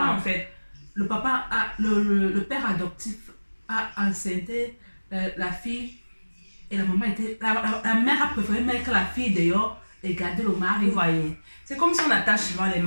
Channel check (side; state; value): both; inverted; correlation -1.00